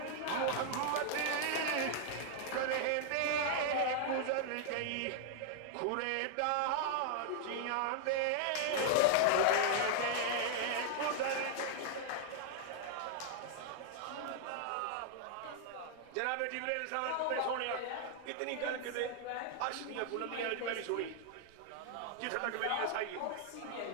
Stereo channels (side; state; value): both; different; correlation -0.01